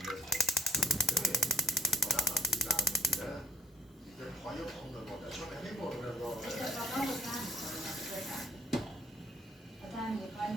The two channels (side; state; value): both; normal; correlation 0.59